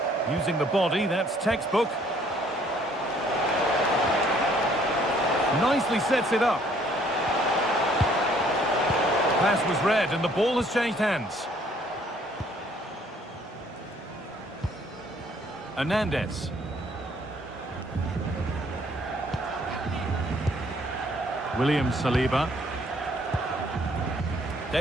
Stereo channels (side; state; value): both; normal; correlation 0.62